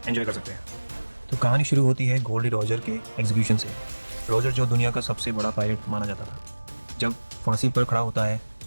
एंजॉय कर सकते हैं। तो कहानी शुरू होती है गोल्डी रॉजर के एग्जीक्यूशन से। रॉजर जो दुनिया का सबसे बड़ा पायरेट माना जाता था, जब फांसी पर खड़ा होता है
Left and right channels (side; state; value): both; inverted; correlation -1.00